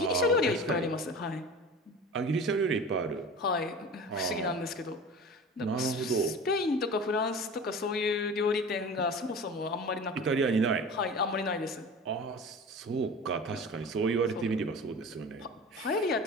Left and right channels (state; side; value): normal; both; correlation 0.36